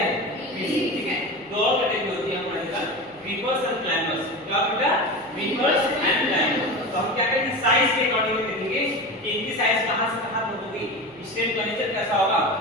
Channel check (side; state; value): left; noise; hum, 29 dB below the sound